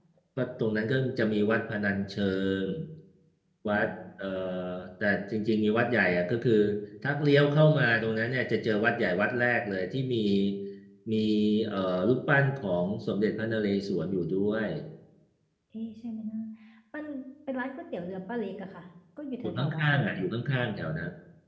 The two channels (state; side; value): identical; both; correlation 1.00